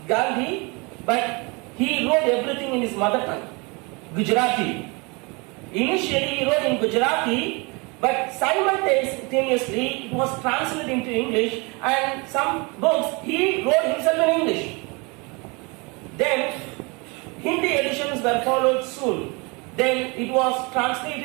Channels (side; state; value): left; quieter; 28.6 dB